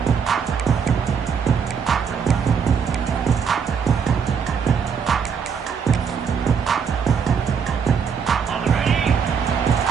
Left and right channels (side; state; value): left; quieter; 6.6 dB